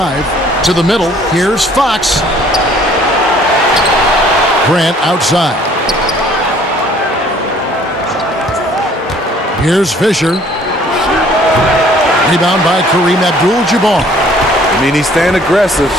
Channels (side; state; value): both; normal; correlation 0.57